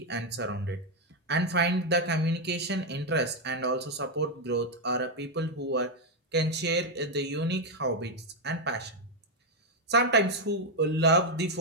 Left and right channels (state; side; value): normal; both; correlation 0.02